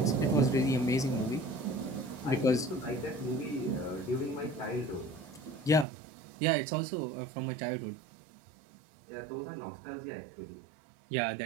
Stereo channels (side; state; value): left; drops out; at 5.9 s